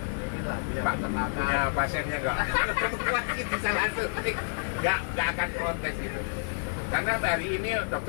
Lah, punya punya pasiennya nggak? Pasti bisa langsung nggak akan protes itu. Karena hari ini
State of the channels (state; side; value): silent; right; 59 dB below the other